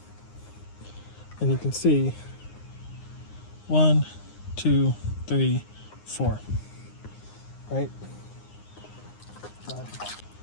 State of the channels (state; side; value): late; right; 9.7 ms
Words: And you can see 1, 2, 3, 4. Right?